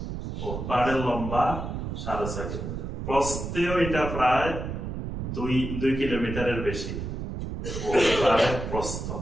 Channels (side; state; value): right; noise; rumble, 5 dB below the sound